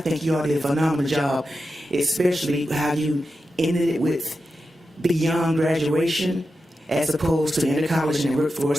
think you all did a phenomenal job, especially how you ended it with beyond graduation, as opposed to inter-college and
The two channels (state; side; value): normal; both; correlation 0.90